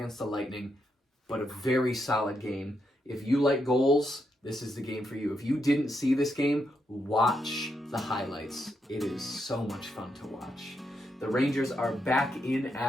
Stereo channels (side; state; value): both; normal; correlation 0.81